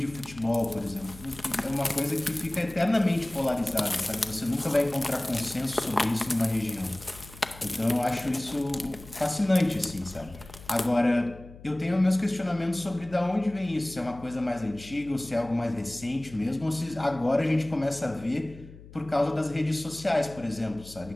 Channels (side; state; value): left; noise; hum, 18 dB below the sound